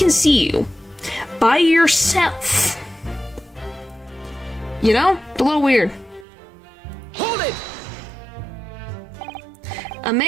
see you by yourself? You know? A little weird. Hold it! A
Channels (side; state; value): left; drops out; at 6.2 s